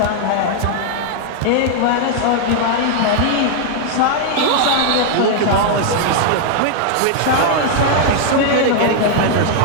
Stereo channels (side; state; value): both; different; correlation 0.00